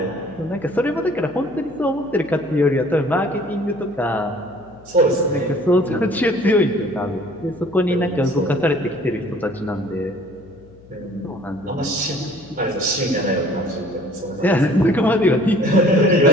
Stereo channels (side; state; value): left; noise; hum, 24 dB below the sound